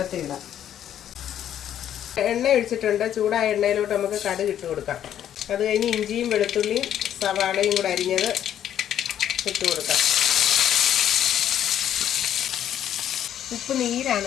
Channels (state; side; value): quieter; right; 10.4 dB